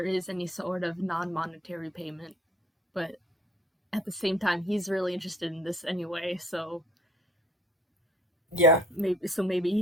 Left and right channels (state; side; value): normal; both; correlation 0.56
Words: is any sort of non-monetary payment, but at the same time he's really interested in this anyway, so yeah, maybe